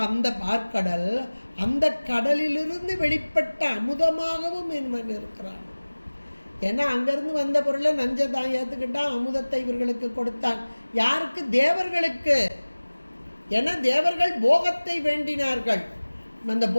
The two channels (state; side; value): inverted; both; correlation -1.00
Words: அந்த பார்க்கடல் அந்த கடலிலிருந்து வெளிப்பட்ட அமுதமாகவும் இவன் இருக்கிறான். ஏன்னா அங்கேருந்து வந்த பொருளை நஞ்சை தான் ஏற்றுக்கிட்டான், அமுதத்தை இவர்களுக்கு கொடுத்தான். யாருக்கு? தேவர்களுக்கு. ஏன்னா தேவர்கள் போகத்தை வேண்டினார்கள், அந்த